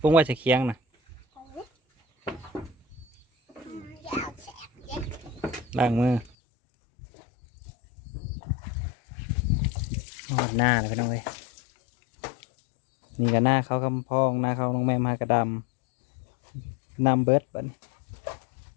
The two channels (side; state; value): right; drops out; at 6.3 s